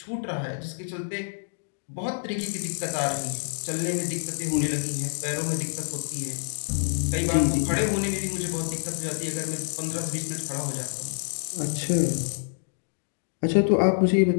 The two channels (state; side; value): silent; right; digital silence